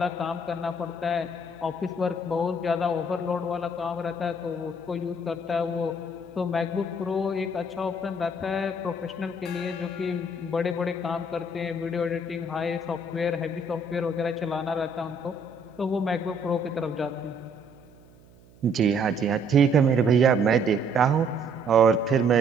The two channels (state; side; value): noise; right; hum, 26 dB below the sound